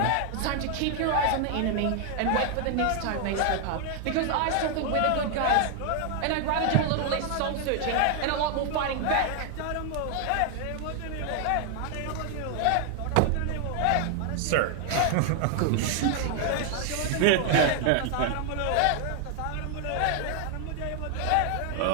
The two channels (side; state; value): both; different; correlation 0.00